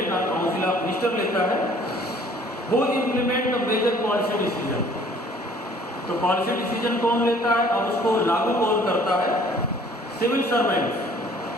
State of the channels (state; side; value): normal; both; correlation 0.55